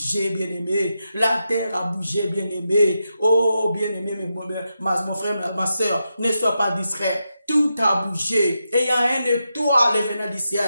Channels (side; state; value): both; inverted; correlation -0.87